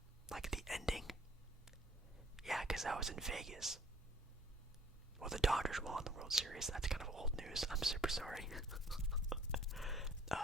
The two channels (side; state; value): both; normal; correlation 0.57